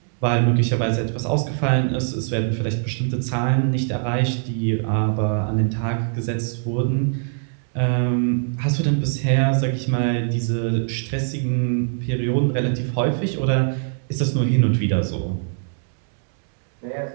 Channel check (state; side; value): silent; left; digital silence